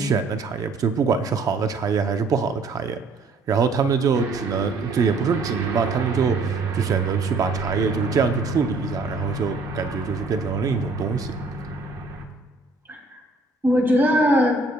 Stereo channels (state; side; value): quieter; left; 3.5 dB